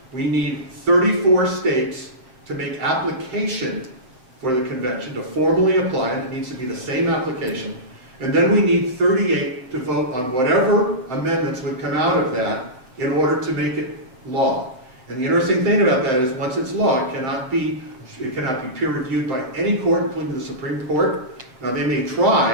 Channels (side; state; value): left; late; 7.6 ms